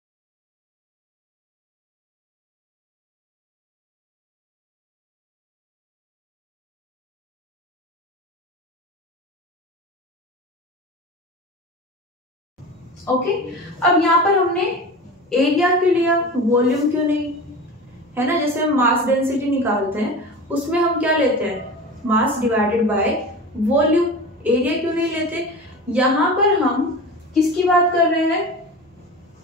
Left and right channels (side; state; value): both; normal; correlation 0.32